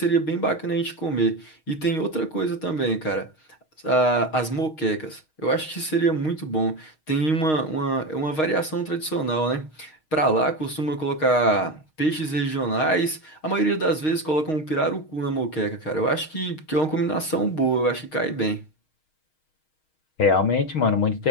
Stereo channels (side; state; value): right; late; 6.4 ms